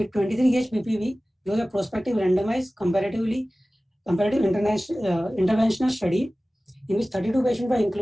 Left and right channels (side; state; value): both; normal; correlation 0.97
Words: 23 gauge PPV. It was a prospective randomized comparative interventional study in which 32 patients were